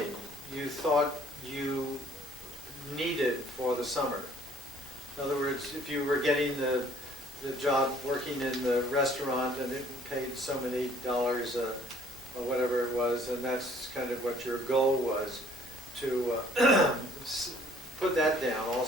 you thought you needed for the summer. In other words, if you were getting the job working in the restaurant and it paid so many dollars or whatever it was, and that's kind of what your goal was, to put that down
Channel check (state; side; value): normal; both; correlation 0.58